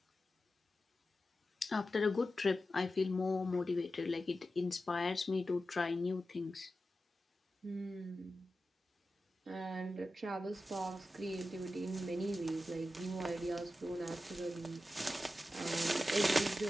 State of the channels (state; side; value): normal; both; correlation 0.92